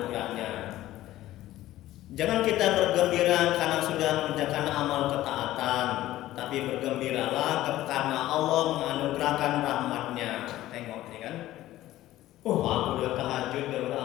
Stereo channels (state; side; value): quieter; right; 15.0 dB